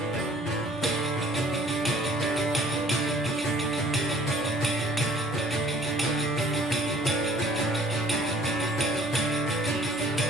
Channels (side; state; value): both; normal; correlation 0.54